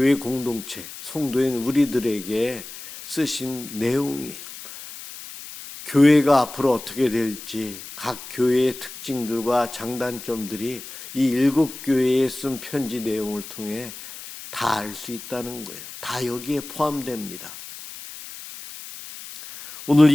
공동체, 성도인 우리들에게 쓰신 내용이에요. 교회가 앞으로 어떻게 될지 각 교회의 특징들과 장단점들이 이 7교회에 쓴 편지 내용을 통해 다 알 수 있다는 거예요. 다 여기에 포함됩니다. 오늘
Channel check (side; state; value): left; noise; hiss, 13 dB below the sound